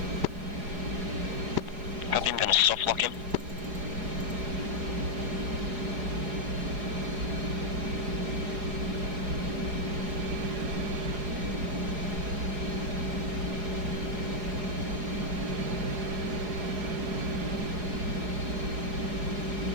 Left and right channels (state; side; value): late; left; 4.8 ms